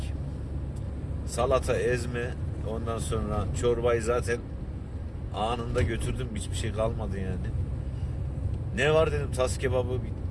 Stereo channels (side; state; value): both; identical; correlation 1.00